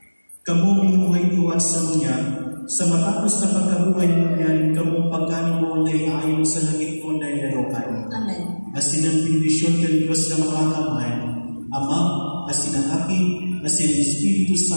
kamo binuhay iwan sa munya, sa matapos na pagkabuhay mo yan, kamong pagkain mo na iayon sa langit mo na ilarokan. Amen. Asin ang bendisyon ng Diyos na makakamay, Ama, asin ang Aki, asin ang Espiritu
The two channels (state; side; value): inverted; both; correlation -1.00